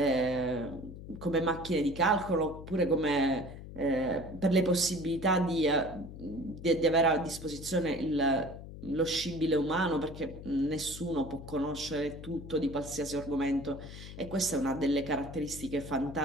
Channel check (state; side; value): noise; left; hum, 13 dB below the sound